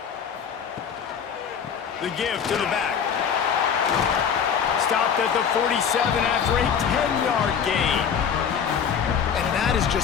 The give to the back. Stopped at the 47 after a 10-yard gain. And that is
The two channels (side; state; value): right; quieter; 7.4 dB